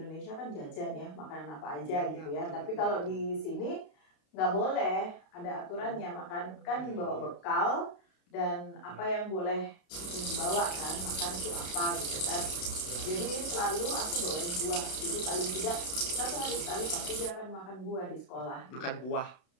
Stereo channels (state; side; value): late; right; 32 ms